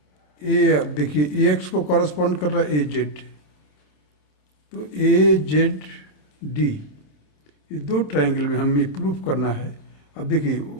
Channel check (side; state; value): right; late; 27 ms